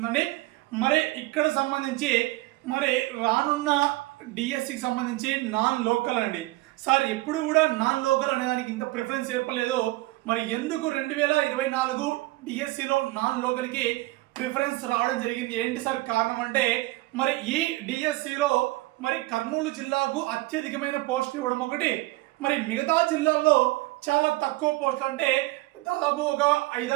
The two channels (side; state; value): left; quieter; 20.2 dB